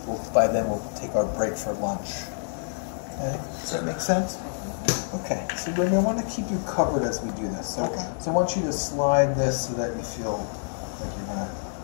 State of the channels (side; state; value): right; silent; digital silence